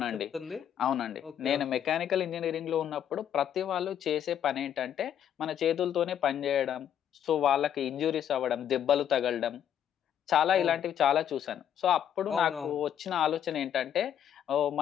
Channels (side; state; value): right; quieter; 9.7 dB